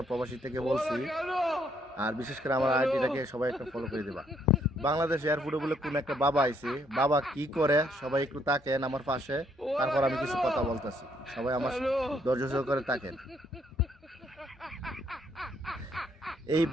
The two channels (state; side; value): normal; both; correlation 0.70